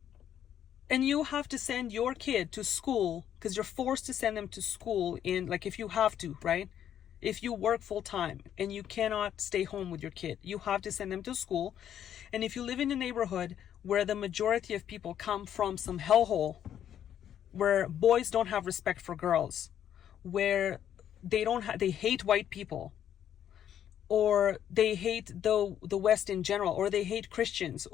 And you have to send your kid to school because you're forced to send them to school if you have to, right? If you work full time and you cannot stay home with your kid, you have to send them to school. And if you live in a neighborhood where the majority of people come from some hellhole, where boys don't have respect for girls, where they hate white people, or they hate the West in general, or they hate Christians,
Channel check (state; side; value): quieter; right; 10.0 dB